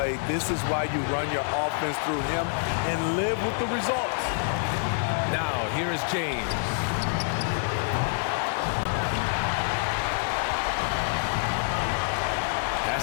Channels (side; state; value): right; silent; 60 dB below the other